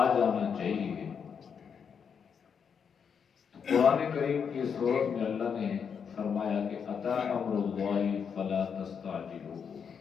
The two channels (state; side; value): quieter; right; 6.8 dB